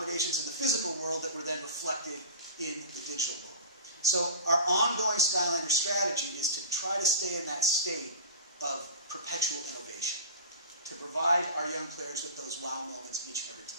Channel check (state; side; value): inverted; both; correlation -0.32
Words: in the physical world that were then reflected in the digital world. So our ongoing Skylanders strategy is to try to stay in that state of perpetual innovation, to provide our young players with those wow moments each and every